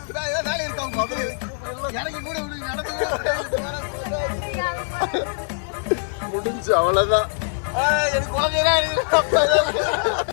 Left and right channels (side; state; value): right; silent; digital silence